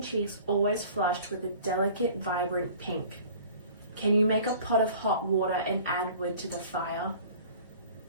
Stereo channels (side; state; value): both; inverted; correlation -0.47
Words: cheeks always flushed with a delicate, vibrant pink. "Can you make a pot of hot water and add wood to the fire?"